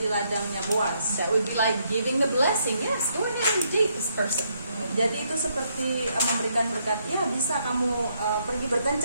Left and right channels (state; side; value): inverted; both; correlation -0.74